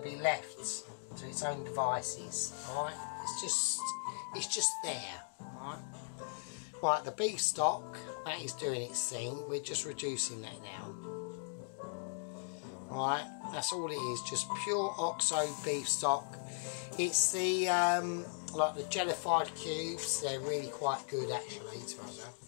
be left to its own devices. Alright, it's just there. Alright. Right, the beef stock, that is doing its thing. We're just reducing that now. Alright, that's all it is, just pure OXO beef stock. It's the like the jellified cubes. They're really quite good actually, to be honest.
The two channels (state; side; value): silent; right; digital silence